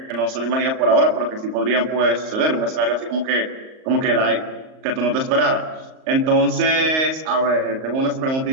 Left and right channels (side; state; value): left; late; 38 ms